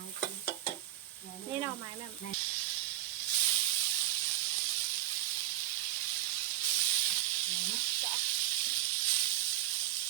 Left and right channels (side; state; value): left; quieter; 13.5 dB